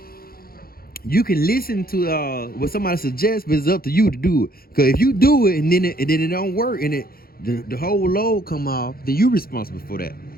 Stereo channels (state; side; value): late; right; 0.43 ms